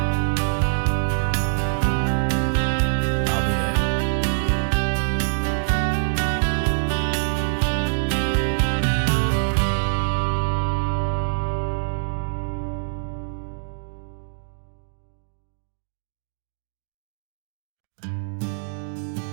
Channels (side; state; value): left; silent; digital silence